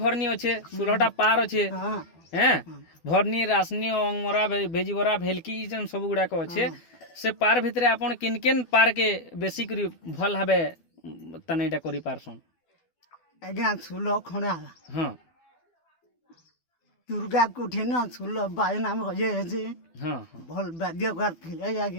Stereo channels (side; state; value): right; late; 12 ms